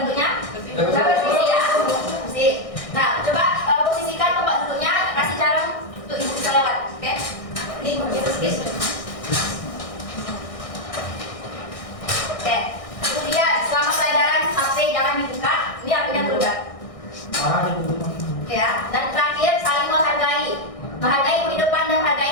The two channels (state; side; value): late; right; 1.6 ms